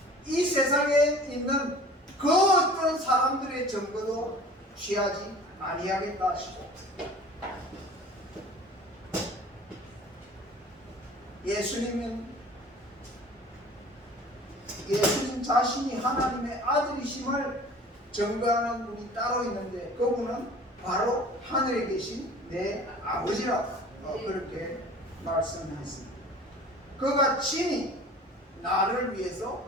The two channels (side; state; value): both; normal; correlation 0.45